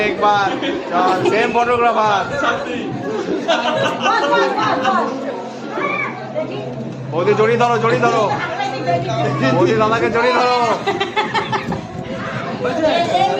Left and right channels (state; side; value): identical; both; correlation 1.00